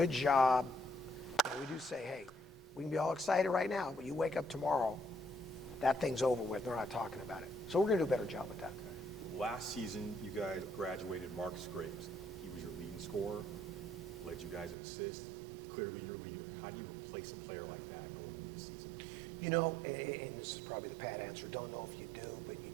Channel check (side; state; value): left; drops out; at 14.8 s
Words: job. And we do say, hey, we can be all excited right now, but you wake up tomorrow, that thing's over with. They're not talking about it. So we're going to do a better job with that. Okay. Last season, you guys graduated Marcus Graves. He was your leading scorer, led you guys in assists. Clearly your leader. How do you replace a player like that going into this season? And this is probably the pat answer, don't know if you do, but you